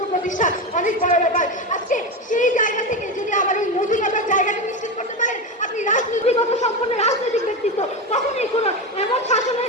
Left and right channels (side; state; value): both; normal; correlation 0.18